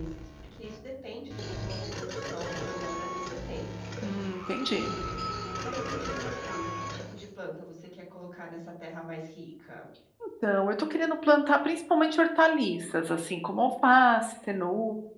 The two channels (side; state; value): both; identical; correlation 1.00